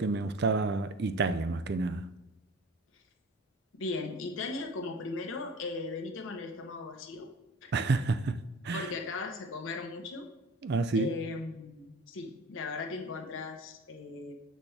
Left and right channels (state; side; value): normal; both; correlation 0.40